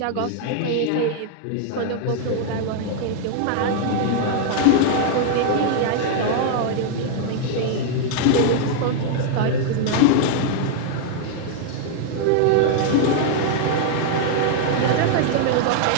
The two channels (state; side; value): different; both; correlation 0.00